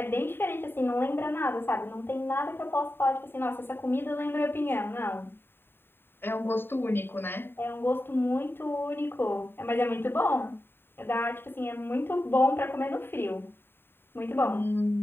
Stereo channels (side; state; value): right; late; 0.11 ms